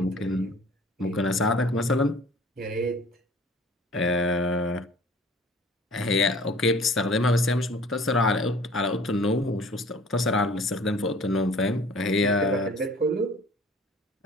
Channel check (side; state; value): both; normal; correlation 0.48